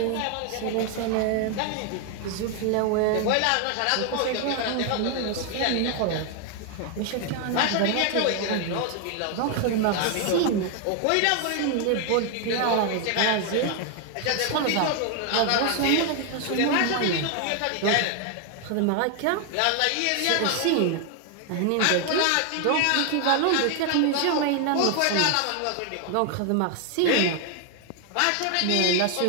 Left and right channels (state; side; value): different; both; correlation 0.00